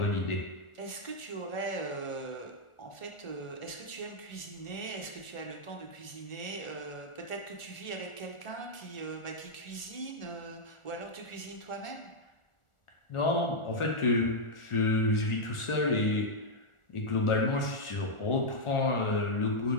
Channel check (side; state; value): right; late; 1.4 ms